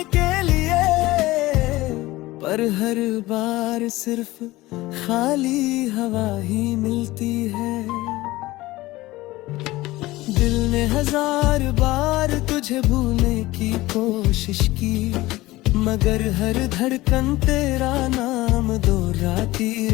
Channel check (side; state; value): right; quieter; 18.7 dB